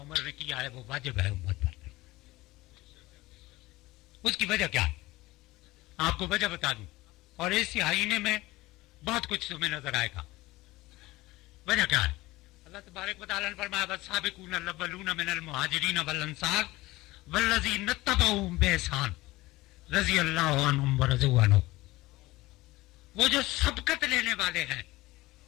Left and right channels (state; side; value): quieter; right; 19.4 dB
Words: ने किया है वो वाजिब है उम्मत पर। उसकी वजह क्या है आपको वजह बता दूं, और इस आईने में बहुत कुछ तुम्हें नजर आएगा। वजह क्या है? अल्लाह तबारक व तआला ने फरमाया वस्साबिकून अल-अव्वलून मिनल मुहाजिरीन वल अंसार वल्लज़ीना तबऊहुम बिइहसान रज़ियल्लाहु अन्हुम व रज़ू अन्हु। वो जो सबकत लेने वाले हैं,